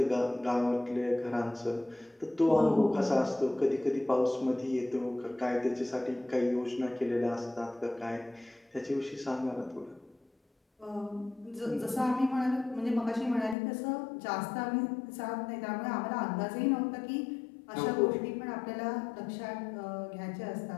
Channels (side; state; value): right; drops out; at 13.6 s